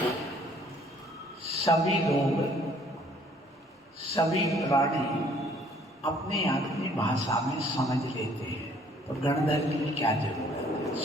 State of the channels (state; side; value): normal; both; correlation 0.59